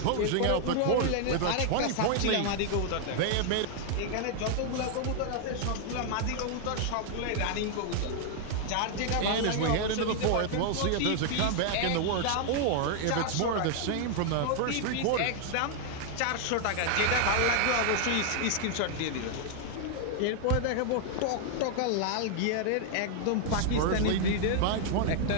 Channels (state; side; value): different; both; correlation 0.00